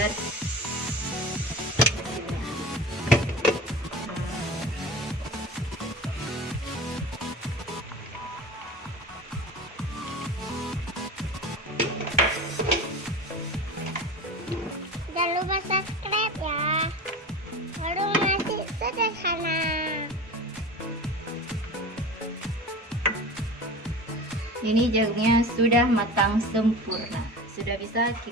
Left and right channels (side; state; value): both; normal; correlation 0.34